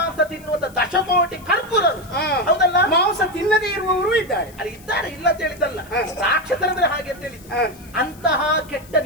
ತಿನ್ನುವಂತ ದಶಕೋಟಿ ಕರ್ಪೂರರು, ಹೌದಲ್ಲ? ಮಾಂಸ ತಿನ್ನದೇ ಇರುವವರು ಇದ್ದಾರೆ. ಅಲ್ಲಿ ಇದ್ದಾರೆ, ಇಲ್ಲ ಅಂತ ಹೇಳಿದ್ದಲ್ಲ. ರಾಕ್ಷಸರಂದ್ರೆ ಹಾಗೆ ಅಂತ ಹೇಳಿದ್ದು. ಅಂತಹ ಕೆಟ್ಟ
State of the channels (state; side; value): noise; left; hiss, 24 dB below the sound